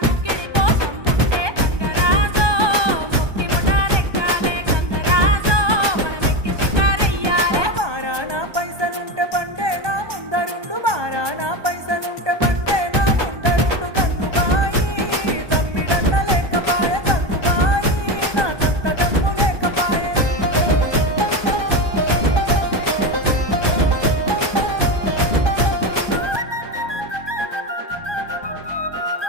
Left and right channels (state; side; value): late; left; 1.2 ms